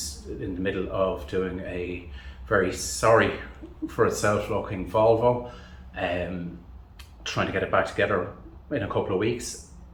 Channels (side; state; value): both; identical; correlation 1.00